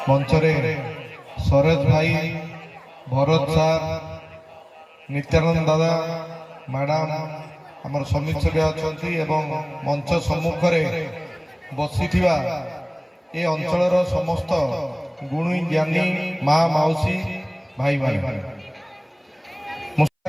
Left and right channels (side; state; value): both; identical; correlation 1.00